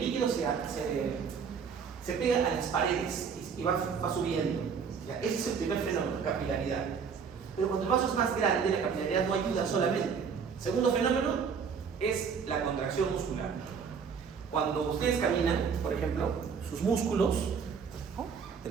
se pega a las paredes y va subiendo. ¿Ya? Ese es el primer fenómeno, capilaridad. Pero cuando el vaso es más grande, la capilaridad no ayuda solamente. Segundo fenómeno es la contracción muscular. Cuando ustedes caminan, por ejemplo, sus músculos, ¿no?, de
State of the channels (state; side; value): quieter; left; 6.3 dB